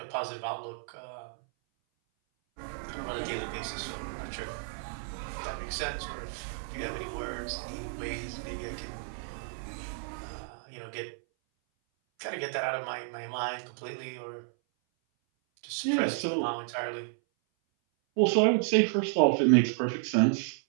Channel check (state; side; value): silent; left; 57 dB below the other